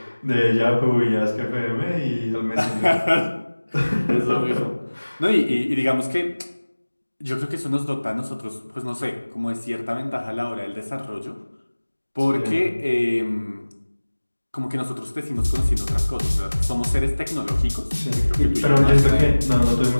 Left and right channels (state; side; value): inverted; both; correlation -1.00